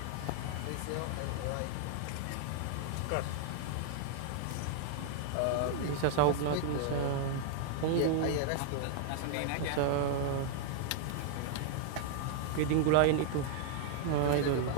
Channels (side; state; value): both; different; correlation -0.01